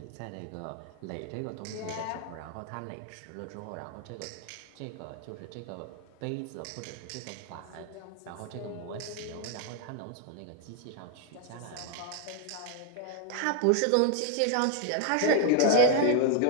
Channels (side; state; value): both; different; correlation 0.00